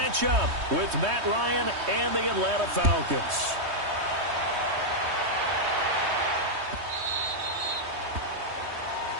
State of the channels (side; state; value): left; late; 3.2 ms